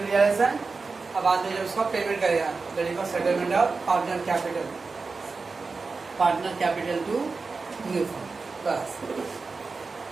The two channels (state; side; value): quieter; left; 4.2 dB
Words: रियलाइजेशन, अब बाद में जब उसका पेमेंट करेगा that is settlement of partner capital, partner capital to new firm. बस